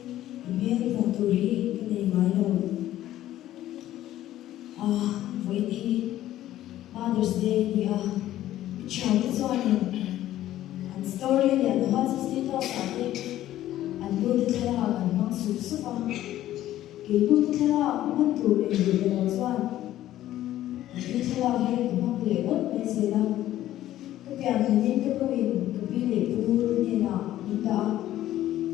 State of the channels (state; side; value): quieter; right; 13.5 dB